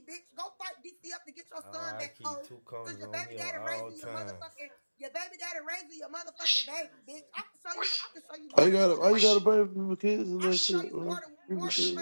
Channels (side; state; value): both; inverted; correlation -1.00